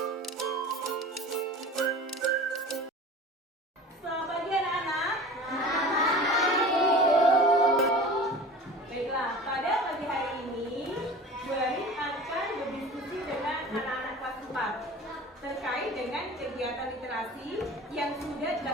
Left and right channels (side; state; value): both; normal; correlation 0.38